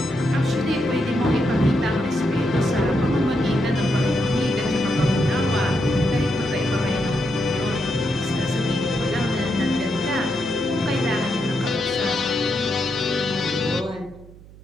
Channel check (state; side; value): noise; right; hum, 20 dB below the sound